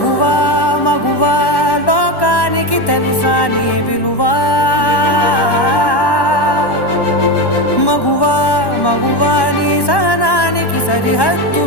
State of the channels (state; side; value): late; right; 1.1 ms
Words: మగువా లోకానికి తెలుసా నీ విలువా మగువా మగువా నీ సహనానికి